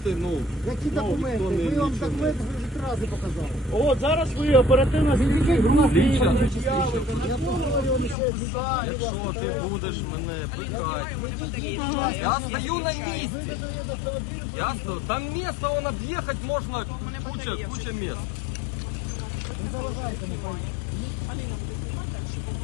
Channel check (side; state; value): right; drops out; at 8.2 s